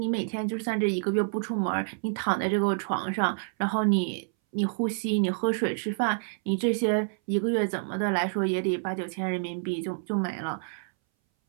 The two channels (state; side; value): silent; left; 59 dB below the other